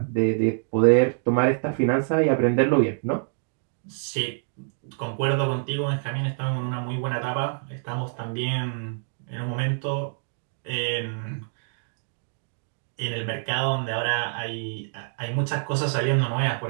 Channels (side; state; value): left; silent; digital silence